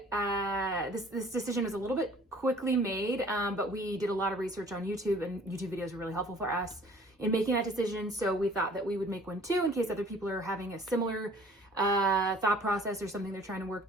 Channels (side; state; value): both; normal; correlation 0.52